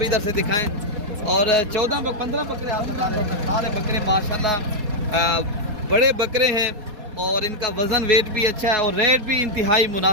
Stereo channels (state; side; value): late; left; 4.2 ms